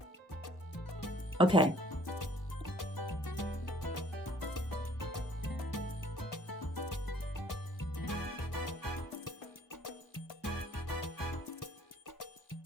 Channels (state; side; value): normal; both; correlation 0.57